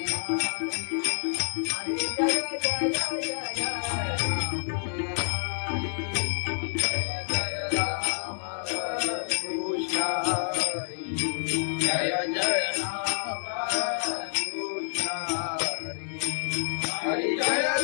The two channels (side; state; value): right; silent; digital silence